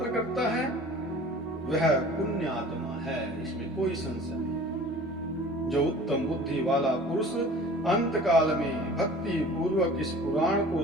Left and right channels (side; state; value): both; normal; correlation 0.44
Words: करता है वह पुण्यात्मा है, इसमें कोई संशय नहीं। जो उत्तम बुद्धि वाला पुरुष अंत काल में भक्ति पूर्वक इस पुराण को